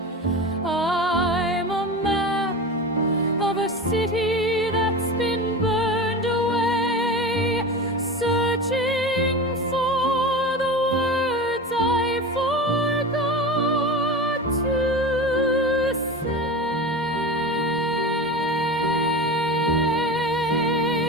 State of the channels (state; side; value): normal; both; correlation 0.28